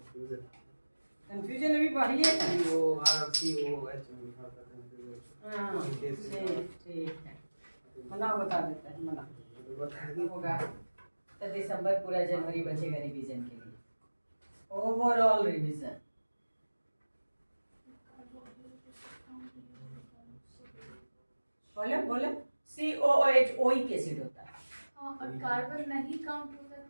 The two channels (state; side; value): inverted; both; correlation -1.00